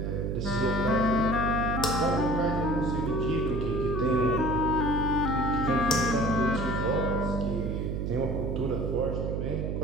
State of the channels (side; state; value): right; noise; hum, 1 dB below the sound